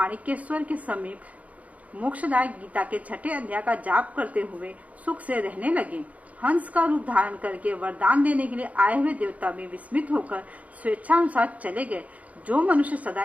के समीप मोक्षदायक गीता के 6ठे अध्याय का जाप करते हुए सुख से रहने लगे। हंस का रूप धारण करके वरदान देने के लिए आए हुए देवता भी विस्मित होकर स्वेच्छानुसार चले गए। जो मनुष्य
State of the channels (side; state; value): left; late; 0.069 ms